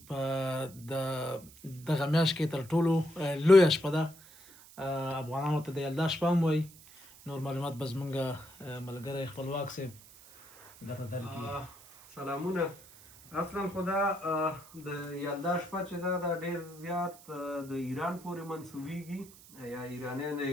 په دغه میاشت کې تر ټولو لویه شپه ده. افغانانو ته د یلدا شپه هم وایي. نور معلومات به زمونږ ملګری خپلواک صاحب درته درکړي. سلامونه. اصلا خو دا د یلدا شپه چې ده دا ډېر زیات د ایران پورې منسوبېږي یا ایرانیان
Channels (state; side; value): noise; right; hiss, 21 dB below the sound